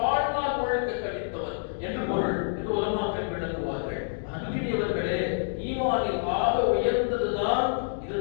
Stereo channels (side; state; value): right; silent; digital silence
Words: முழுக்க கழித்தவன் என்று பொருள் என்று உலமாக்கள் விளக்குவார்கள். அன்பினியவர்களே, ஈமானில் ஆக உயர்ந்ததுதான்